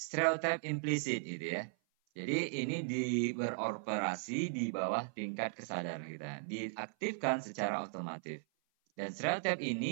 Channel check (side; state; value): left; silent; 53 dB below the other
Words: implisit gitu ya. Jadi ini beroperasi di bawah tingkat kesadaran kita. Diaktifkan secara otomatis. Dan stereotip